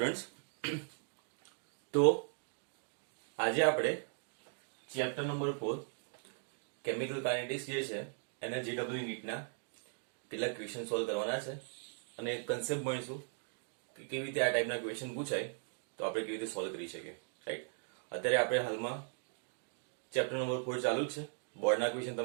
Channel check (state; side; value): silent; left; 52 dB below the other